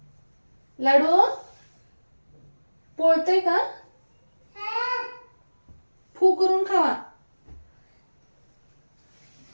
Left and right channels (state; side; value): inverted; both; correlation -1.00